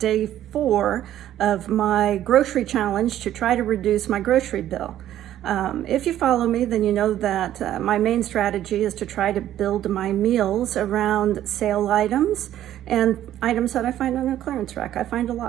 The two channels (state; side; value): quieter; left; 12.2 dB